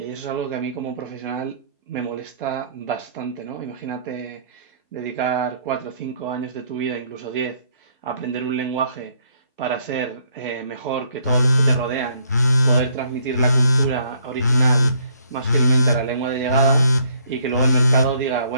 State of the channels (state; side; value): inverted; both; correlation -0.66